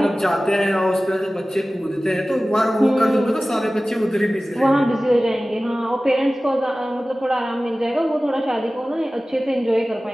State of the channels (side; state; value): both; normal; correlation 0.97